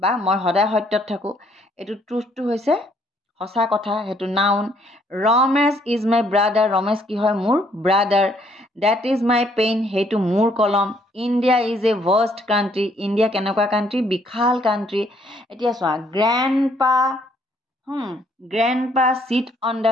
বা মই সদায় সত্যত থাকো এটো ট্ৰুথটো হৈছে সঁচা কথা হেতু noun Ramesh is my brother Ramesh কি হয় মোৰ brother that is my pen হেতু মোৰ কলম India is a vast country India কেনেকুৱা country বিশাল country এতিয়া চোৱা grandpa sit on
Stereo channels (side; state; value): both; normal; correlation 0.66